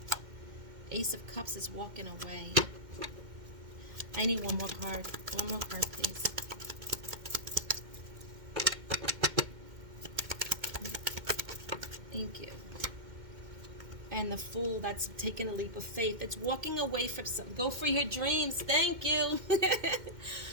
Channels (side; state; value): left; late; 2.1 ms